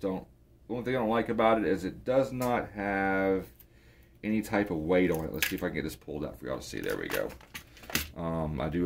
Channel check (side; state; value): both; identical; correlation 1.00